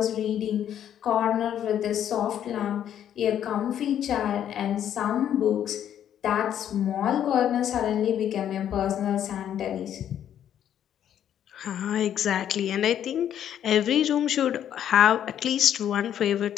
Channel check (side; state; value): right; quieter; 10.1 dB